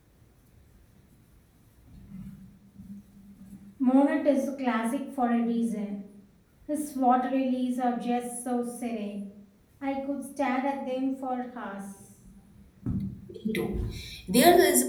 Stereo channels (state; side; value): identical; both; correlation 1.00